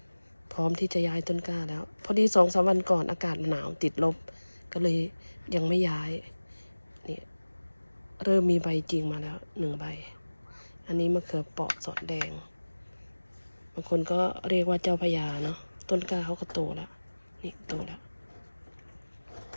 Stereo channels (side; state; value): both; inverted; correlation -1.00